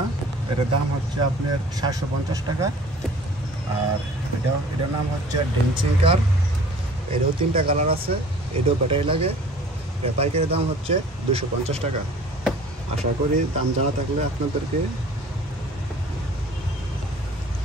না। এটার দাম হচ্ছে আপনার 750 টাকা। আর এটার নাম হচ্ছে ড্যান্সিং কার। এটাও 3টা কালার আছে, এটাও ব্যাটারি লাগে। এটা পাইকারি দাম হচ্ছে 250 টাকা। আশা করি দাম জানা থাকলে আপনাদেরকে।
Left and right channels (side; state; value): both; normal; correlation 0.48